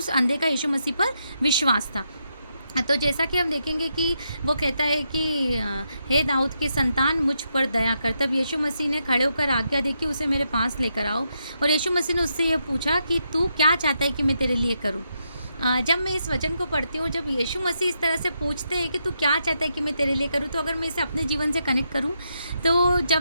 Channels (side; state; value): both; inverted; correlation -0.82